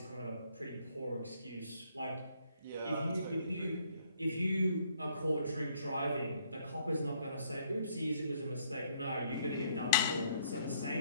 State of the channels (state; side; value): inverted; both; correlation -0.67